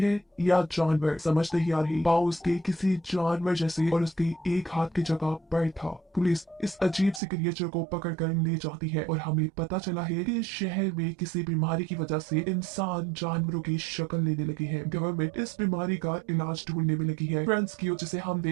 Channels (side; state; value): left; drops out; at 7.2 s